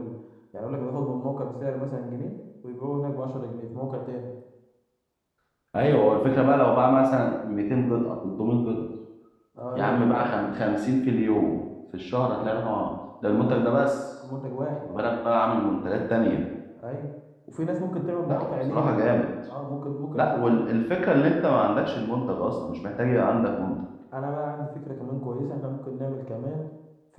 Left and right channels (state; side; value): identical; both; correlation 1.00